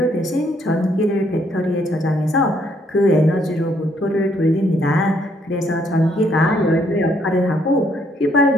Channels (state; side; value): normal; both; correlation 0.69